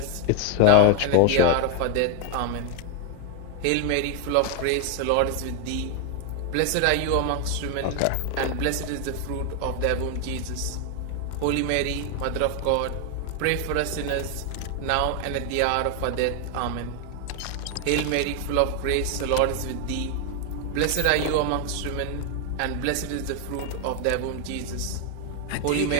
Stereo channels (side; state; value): both; different; correlation 0.00